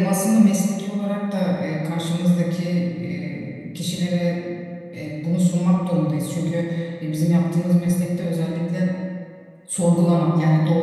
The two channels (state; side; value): identical; both; correlation 1.00